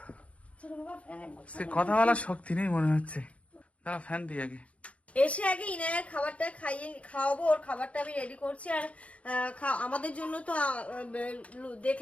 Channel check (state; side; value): late; right; 0.064 ms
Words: চলো বাবা, সে কথা বলার শক্তি নেই মনে হচ্ছে। দাঁড়া ফ্যান দিই আগে। এসে আগে ইনায়ার খাবারটা খাওয়াবো। ওর খাবারটা আমি রেডি করছি। আর আমাদের জন্য তো